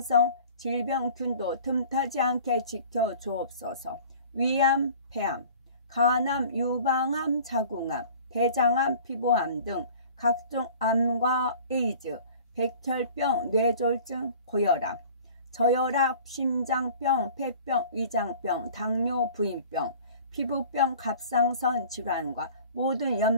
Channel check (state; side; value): inverted; both; correlation -0.46